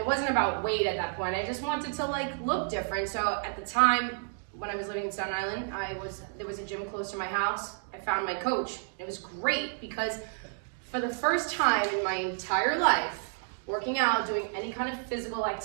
wasn't about weight at that point, I just wanted to look different. So at the time, when I was living in Staten Island, there was a gym close to my house. I found my coach. It was great because for the first time in my entire life, working out, doing any kind of physical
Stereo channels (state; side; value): silent; left; digital silence